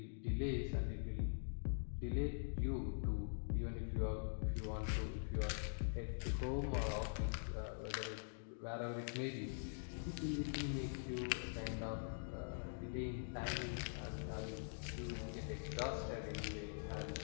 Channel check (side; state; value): right; silent; digital silence